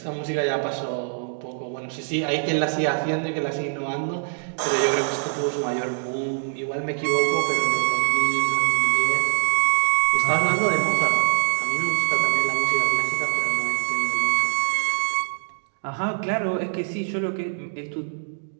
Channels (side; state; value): left; silent; digital silence